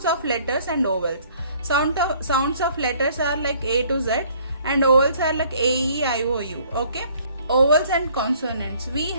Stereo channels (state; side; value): inverted; both; correlation -0.59